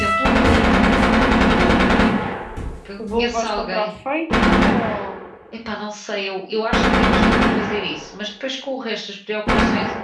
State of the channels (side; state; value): both; identical; correlation 1.00